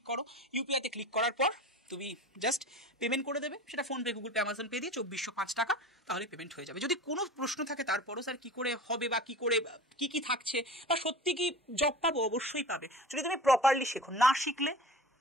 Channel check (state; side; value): normal; both; correlation 0.35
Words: করো। ইউপিআইতে ক্লিক করার পর তুমি জাস্ট পেমেন্ট করে দেবে, সেটা PhonePe, Google pay, Amazon pay দিয়ে 2405 টাকা, তাহলে পেমেন্ট হয়ে যাবে। যদি কোনো প্রশ্ন থাকে তারপরও স্যার কী করে হবে বা কী করে কী থাকছে বা সত্যি কি জব পাবো, অবশ্যই পাবে যদি তুমি প্রপারলি শেখো। না শিখলে